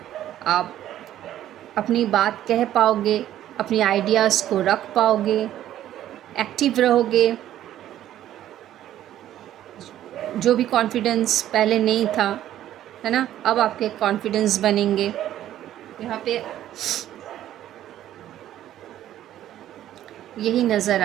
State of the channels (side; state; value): left; quieter; 12.3 dB